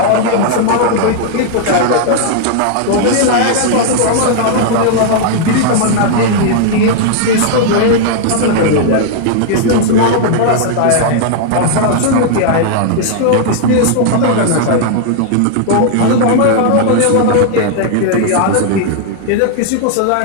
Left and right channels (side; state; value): both; different; correlation -0.01